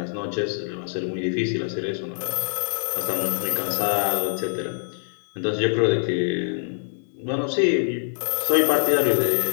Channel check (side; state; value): right; silent; digital silence